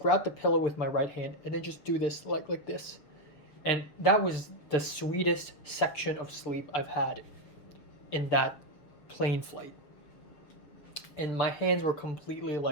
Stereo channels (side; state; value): right; late; 6.9 ms